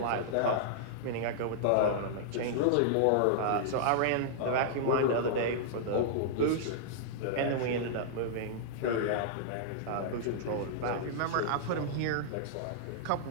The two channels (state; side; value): different; both; correlation -0.01